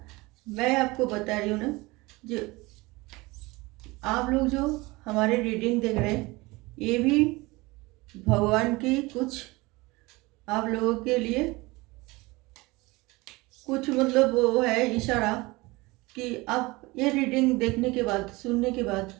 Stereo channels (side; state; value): left; quieter; 22.7 dB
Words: मैं आपको बता रही हूँ ना, जो आप लोग जो हमारे रीडिंग देख रहे हैं, ये भी भगवान की कुछ आप लोगों के लिए कुछ मतलब वो है इशारा कि आप ये रीडिंग देखने के बाद, सुनने के बाद